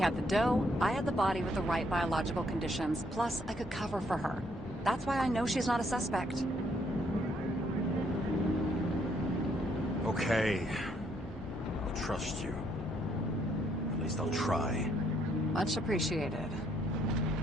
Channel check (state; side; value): normal; both; correlation 0.70